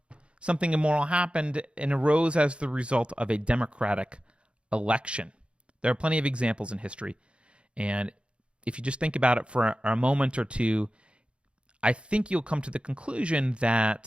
immoral happened and arose as the result of a democratic election. There are plenty of examples in history. And if you just think about it for a moment or two, I think you'll come to the conclusion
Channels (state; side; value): late; left; 0.058 ms